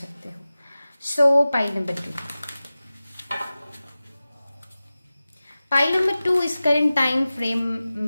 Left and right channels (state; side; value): inverted; both; correlation -0.96